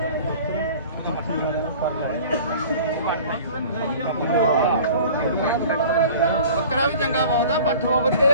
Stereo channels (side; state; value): both; inverted; correlation -0.43